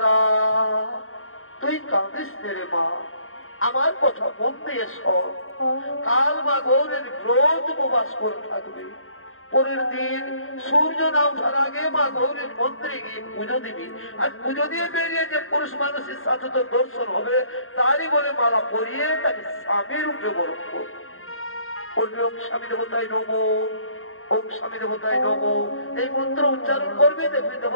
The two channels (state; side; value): late; right; 0.61 ms